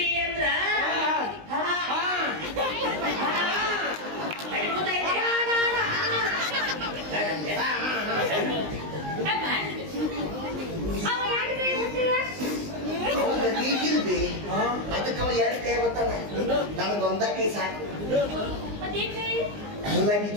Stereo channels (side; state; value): left; late; 19 ms